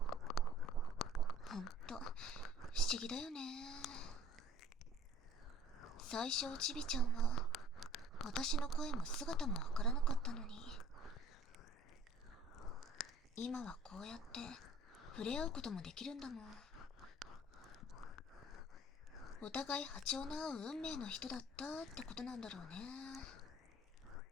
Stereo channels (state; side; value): normal; both; correlation 0.50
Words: ほんと不思議だよね。最初おちびちゃんは私の声も姿もわからなかったのに、今はこうやって触れ合うこともできるんだもん。お互い波長の合う運命の人だったってことなんだろうね。